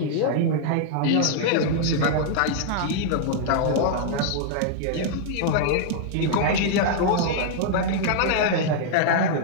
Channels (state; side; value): different; both; correlation -0.01